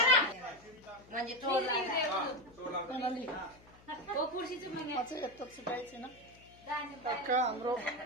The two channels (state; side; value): noise; left; hum, 25 dB below the sound